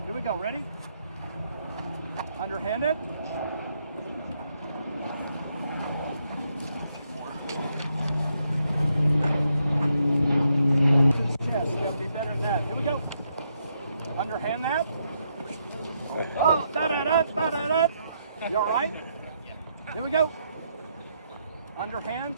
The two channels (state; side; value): inverted; both; correlation -0.77